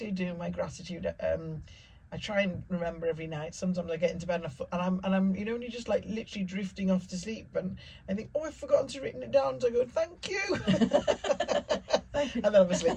my gratitude. I try and remember every night. Sometimes I get into bed and I'm when you're just like literally drifting off to sleep, and I think, oh, I've forgotten to written it down. So I go, thank you. Thank you. And then I'm asleep.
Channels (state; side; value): identical; both; correlation 1.00